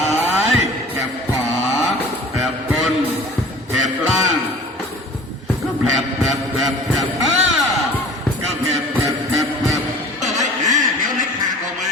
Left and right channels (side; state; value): both; normal; correlation 0.44